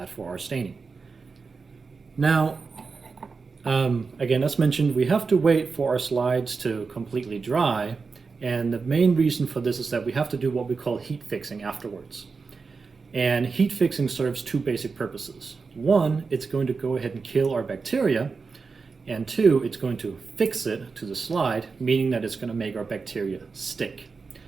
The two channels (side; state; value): left; quieter; 4.7 dB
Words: for our staining. Now, again, as mentioned, we have to wait for our slides to completely dry. And the main reason for this is that we have to do what we call heat fixing afterwards. And heat fixing serves two basic purposes. One, it's going to go ahead and kill our bacteria. And two, it's going to fix it to the slide, meaning that it's going to make our bacteria stick.